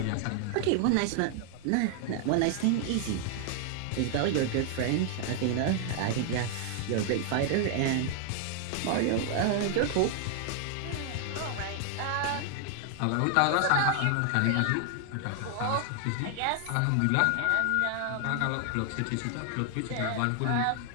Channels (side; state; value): both; different; correlation 0.00